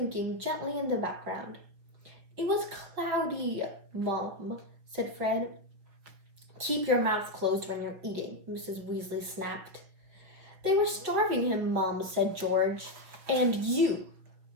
gently in the background. "It was cloudy, Mum," said Fred. "Keep your mouth closed when you're eating," Mrs. Weasley snapped. They were starving him, Mum, said George. And you,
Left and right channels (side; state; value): left; late; 5.2 ms